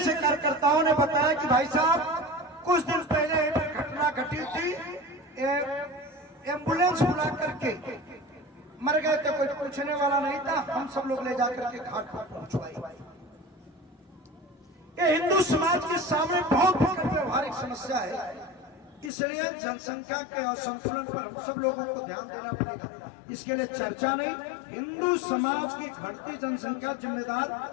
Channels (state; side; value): drops out; right; at 19.1 s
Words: कार्यकर्ताओं ने बताया कि भाई साहब कुछ दिन पहले एक घटना घटी थी, एम्बुलेंस बुला करके मर गए थे, कोई पूछने वाला नहीं था, हम सब लोग ले जाकर के घाट पर पहुंचवाई। ये हिंदू समाज के सामने बहुत व्यवहारिक समस्या है, इसलिए जनसंख्या के असंतुलन पर हम सब लोगों को ध्यान देना पड़ेगा। इसके लिए चर्चा नहीं, हिंदू समाज की घटती जनसंख्या जिम्मेदार